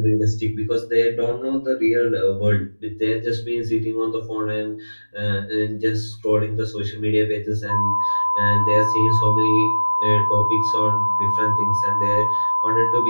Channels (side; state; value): both; inverted; correlation -1.00